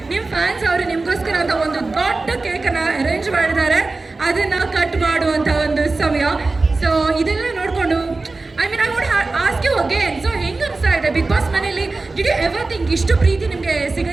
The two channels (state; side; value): quieter; left; 3.5 dB